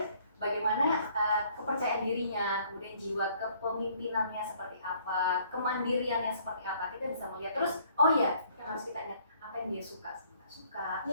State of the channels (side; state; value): both; inverted; correlation -0.61